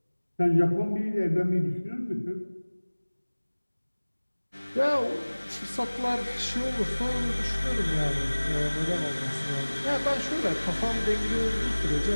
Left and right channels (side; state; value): both; inverted; correlation -1.00